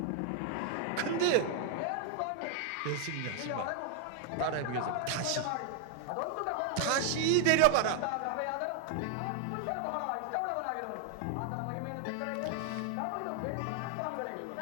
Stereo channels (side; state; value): both; different; correlation 0.00